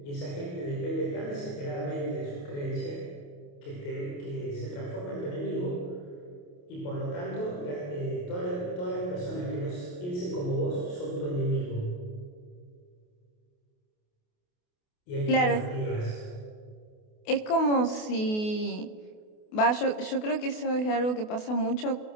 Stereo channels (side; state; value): right; late; 28 ms